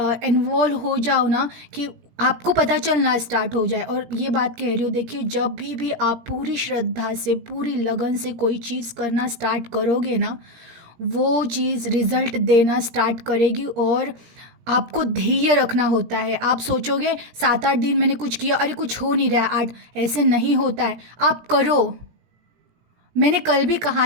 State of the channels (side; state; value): left; late; 17 ms